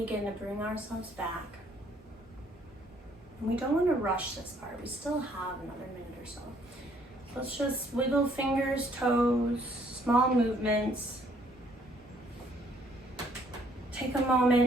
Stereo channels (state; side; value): normal; both; correlation 0.65